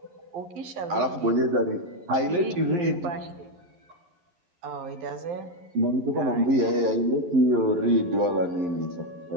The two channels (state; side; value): late; left; 11 ms